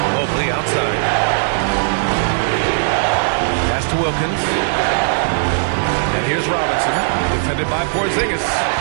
Mobley outside. Pass to Wilkins. And here's Robinson, defended by Porzingis.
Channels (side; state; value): left; silent; 66 dB below the other